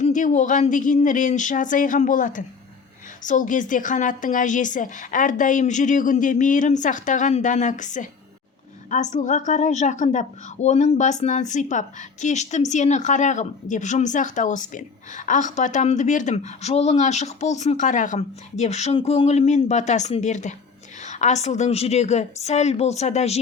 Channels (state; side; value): quieter; right; 5.2 dB